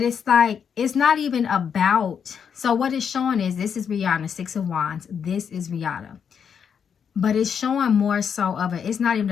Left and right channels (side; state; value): right; quieter; 7.3 dB